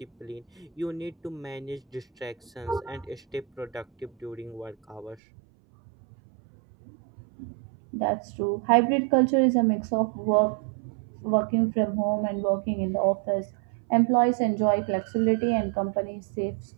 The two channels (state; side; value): drops out; left; at 5.2 s